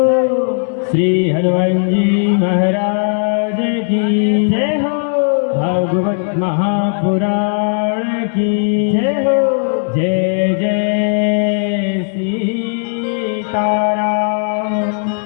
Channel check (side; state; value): right; silent; digital silence